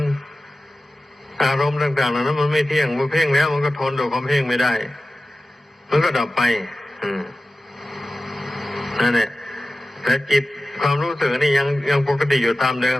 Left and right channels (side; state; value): both; normal; correlation 0.94